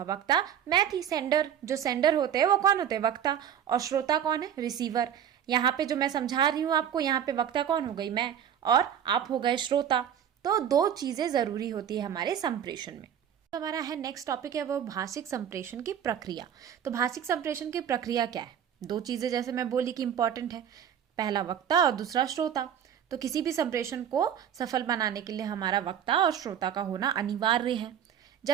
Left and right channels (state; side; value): quieter; left; 9.3 dB